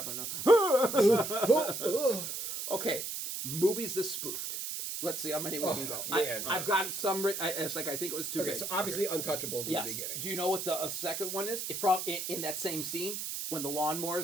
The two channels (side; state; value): right; noise; hiss, 4 dB below the sound